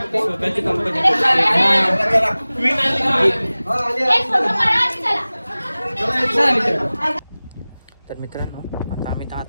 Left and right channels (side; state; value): both; inverted; correlation -0.98